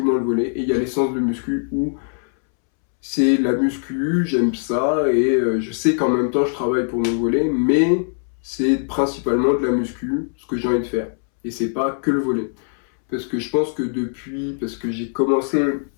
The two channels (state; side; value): silent; right; 65 dB below the other